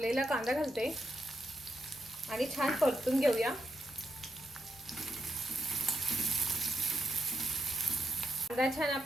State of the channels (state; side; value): normal; both; correlation 0.81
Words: कांदा घालते आणि छान परतून घेऊया। कांदा छान